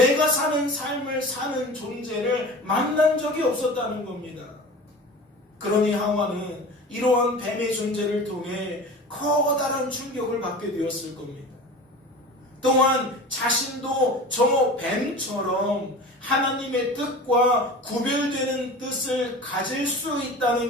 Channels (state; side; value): normal; both; correlation 0.36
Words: 사는 삶을 사는 존재를 만난 적이 없었다는 겁니다. 그러니 하와는 이러한 뱀의 존재를 통해 커다란 충격을 받게 되었을 겁니다. 또한 자신도 저 뱀처럼 하나님의 뜻과 구별되는 뜻을 가질 수